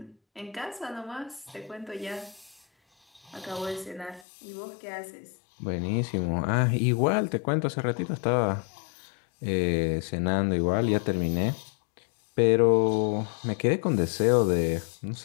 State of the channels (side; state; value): right; drops out; at 4.2 s